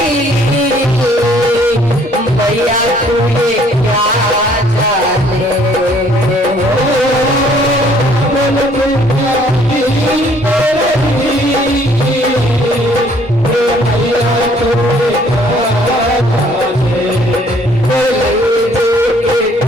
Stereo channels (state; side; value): normal; both; correlation 0.60